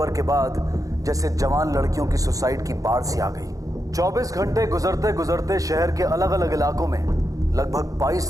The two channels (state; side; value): late; left; 0.17 ms